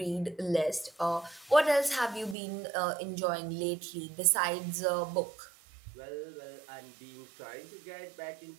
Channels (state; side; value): drops out; left; at 2.4 s